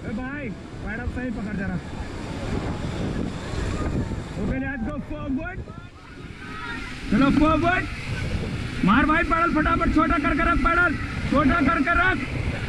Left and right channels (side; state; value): both; identical; correlation 1.00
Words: ए भाई पैडल सही पकड़ जरा। ओके लेट्स गो फॉरवर्ड, चलो फॉरवर्ड, मार भाई पैडल फटाफट, छोटा करके रख पैडल, छोटा करके रख,